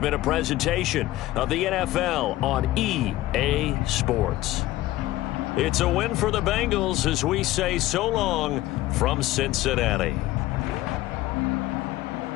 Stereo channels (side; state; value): right; quieter; 16.5 dB